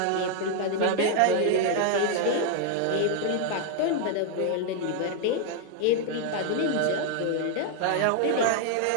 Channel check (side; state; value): both; different; correlation 0.00